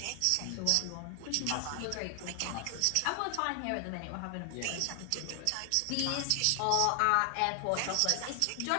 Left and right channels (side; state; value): both; different; correlation 0.00